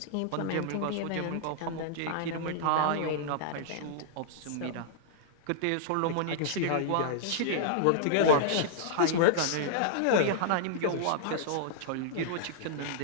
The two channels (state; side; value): different; both; correlation -0.01